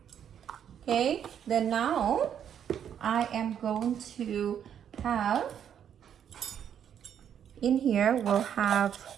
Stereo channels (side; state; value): left; quieter; 8.9 dB